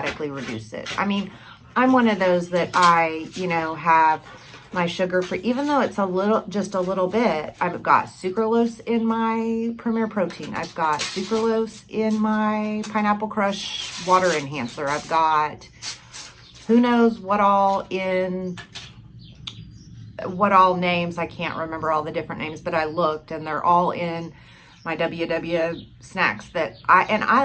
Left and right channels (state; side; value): identical; both; correlation 1.00